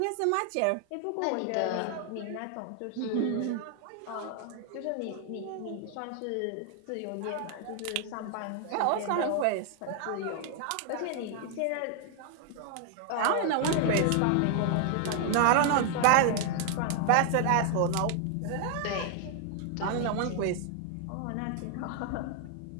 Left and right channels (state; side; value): different; both; correlation 0.00